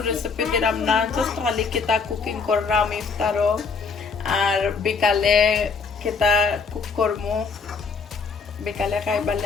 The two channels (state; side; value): quieter; right; 5.0 dB